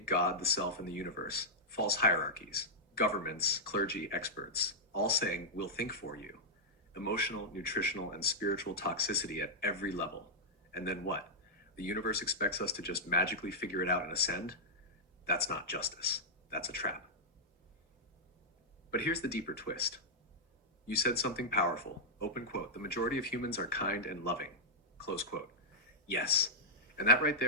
God, the self, and the universe, false hierarchies, governments, clergy, experts, all saying, we'll think for you. Emotional, nutritional, and spiritual toxicity at every level. And then what? The universe expects us to just magically figure it out and ascend? That's not justice. That's a trap. But here's the deeper twist. You said something powerful. Open quote. The majority of humans are kind and loving. Close quote. Yes. And that right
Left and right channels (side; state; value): both; normal; correlation -0.07